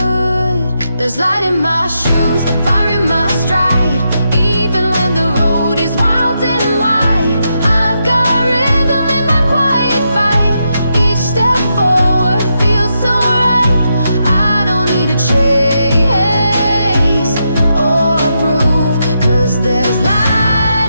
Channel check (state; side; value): inverted; both; correlation -0.83